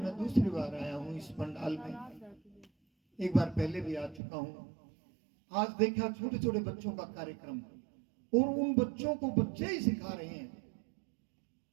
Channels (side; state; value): left; drops out; at 4.2 s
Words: दूसरी बार आया हूं, इस पंडाल में एक बार पहले भी आ चुका हूं। आज देखा छोटे छोटे बच्चों का कार्यक्रम, और उन बच्चों को बच्चे ही सिखा रहे हैं।